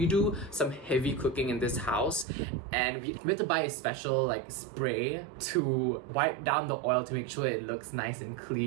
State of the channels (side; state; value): left; drops out; at 2.2 s